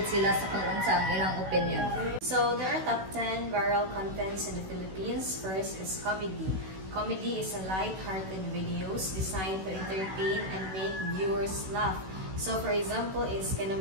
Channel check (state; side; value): late; left; 16 ms